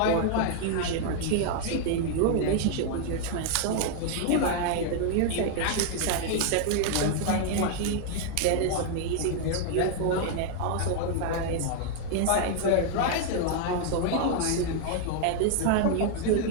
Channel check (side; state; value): both; different; correlation 0.00